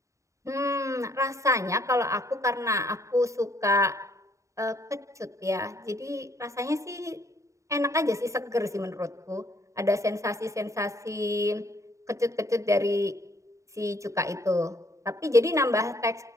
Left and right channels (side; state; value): left; late; 0.15 ms